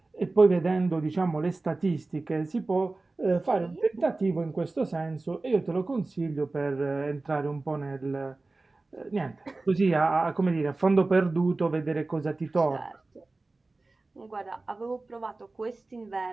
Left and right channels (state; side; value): quieter; left; 3.3 dB